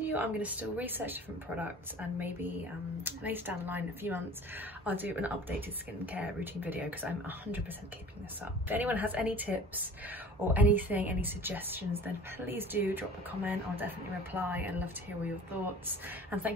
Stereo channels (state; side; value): normal; both; correlation 0.43